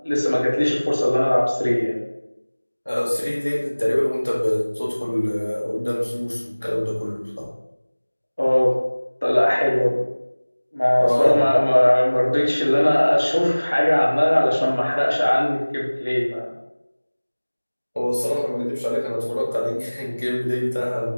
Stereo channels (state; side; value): inverted; both; correlation -1.00